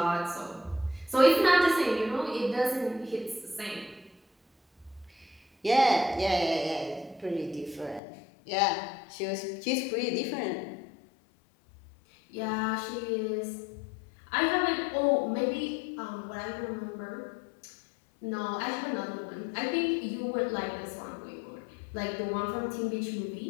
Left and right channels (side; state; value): right; drops out; at 8.0 s